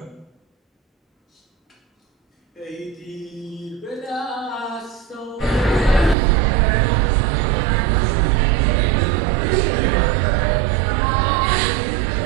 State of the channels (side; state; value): left; drops out; at 6.2 s